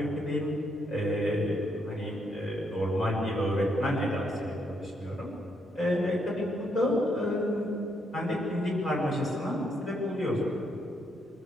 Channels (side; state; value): both; normal; correlation 0.75